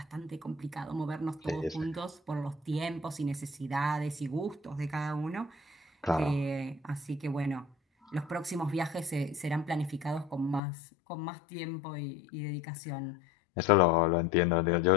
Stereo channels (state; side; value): drops out; right; at 10.6 s